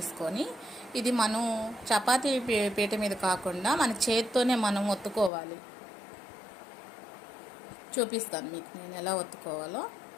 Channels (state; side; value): drops out; right; at 5.3 s